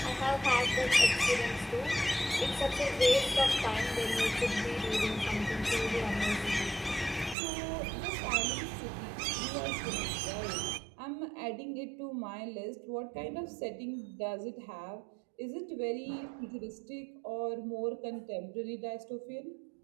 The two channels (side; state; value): left; drops out; at 7.4 s